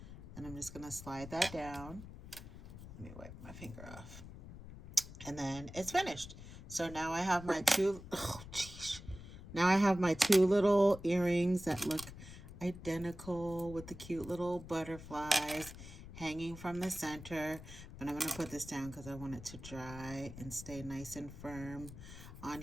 And I'm just going to slide that down. Let me wipe my finger off. And then it's finished. So now I have my now I have my 2 little earrings that look identical with the cute little butterflies hanging from the center. But I'm going to put this down because I want it to dry and stay nice and firm on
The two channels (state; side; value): noise; left; rumble, 14 dB below the sound